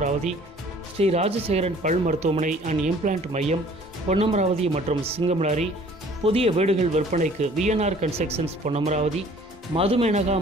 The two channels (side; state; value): both; normal; correlation 0.53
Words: ஸ்ரீ ராஜசேகரன் பல் மருத்துவமனை அண்ட் இம்ப்ளான்ட் மையம் பொன்னமராவதி மற்றும் சிங்கமலாரி. புதிய வீடுகள் விற்பனைக்கு VNR கன்ஸ்ட்ரக்ஷன்ஸ் பொன்னமராவதி, மதுமேனகா